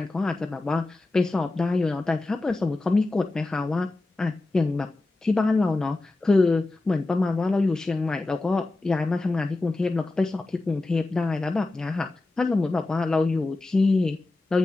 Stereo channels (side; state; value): right; quieter; 3.1 dB